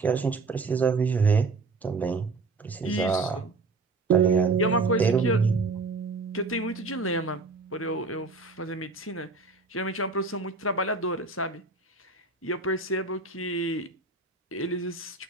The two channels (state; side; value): quieter; left; 3.8 dB